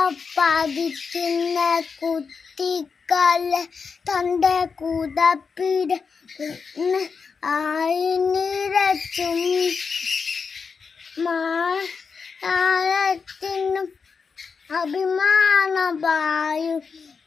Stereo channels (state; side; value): quieter; right; 5.4 dB